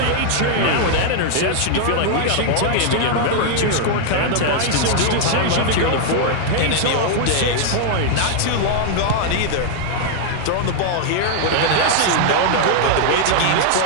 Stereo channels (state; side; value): different; both; correlation -0.01